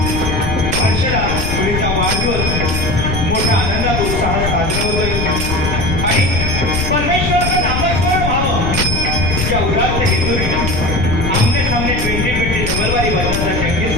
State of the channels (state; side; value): noise; left; rumble, 2 dB below the sound